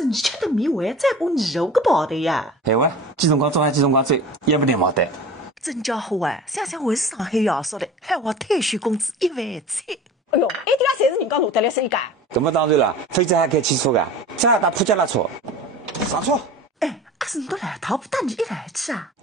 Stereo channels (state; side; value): normal; both; correlation 0.38